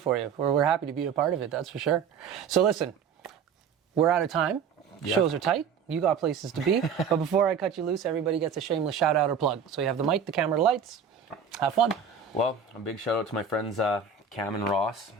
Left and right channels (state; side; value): quieter; left; 6.5 dB